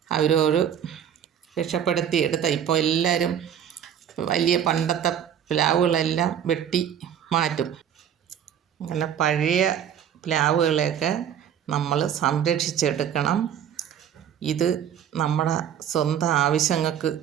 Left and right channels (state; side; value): quieter; left; 9.2 dB